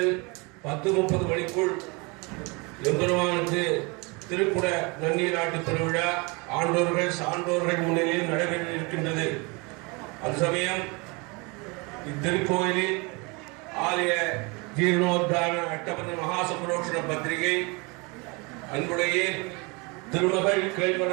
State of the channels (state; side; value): quieter; left; 28.6 dB